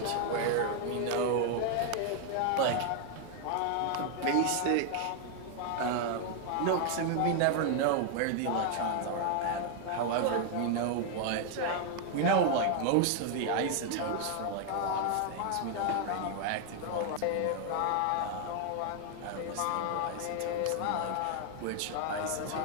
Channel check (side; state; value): both; different; correlation 0.00